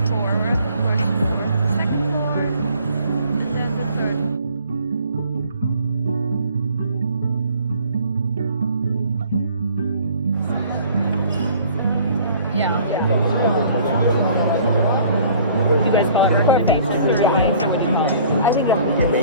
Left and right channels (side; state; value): both; inverted; correlation -0.53